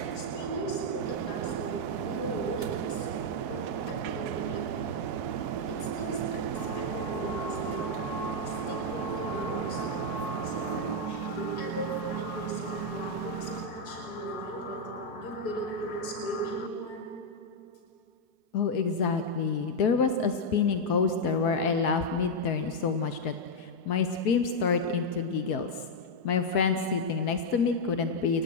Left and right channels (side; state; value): right; late; 4.7 ms